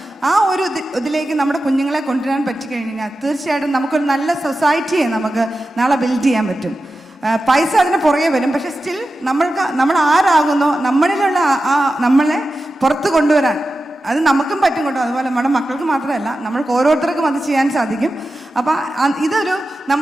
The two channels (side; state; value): both; normal; correlation 0.92